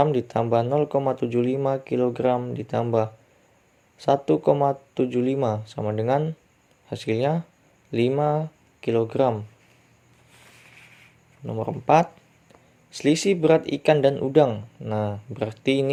ditambah 0,75 kg ditambah 1,75 sama dengan hasilnya 5 kg. Nomor 4. Selisih berat ikan dan udang. Nah, berarti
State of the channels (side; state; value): both; identical; correlation 1.00